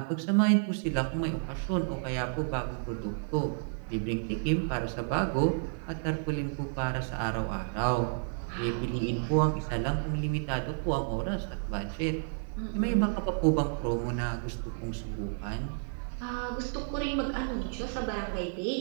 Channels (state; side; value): silent; left; 57 dB below the other